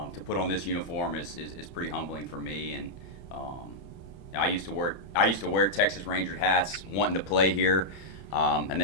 to put on this uniform is pretty humbling for me. And um, I used to wear Texas Ranger hats, wanting to play here. And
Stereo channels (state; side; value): late; right; 31 ms